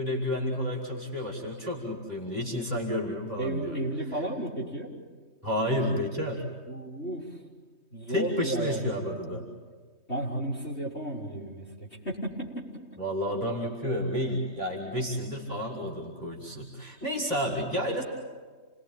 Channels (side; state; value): right; late; 3.2 ms